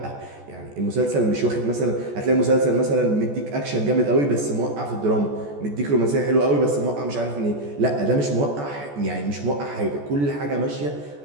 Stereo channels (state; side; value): late; left; 14 ms